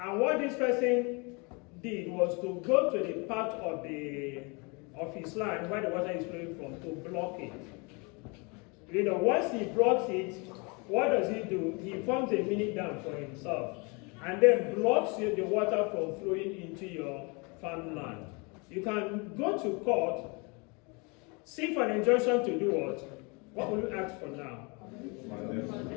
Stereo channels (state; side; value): quieter; right; 30.5 dB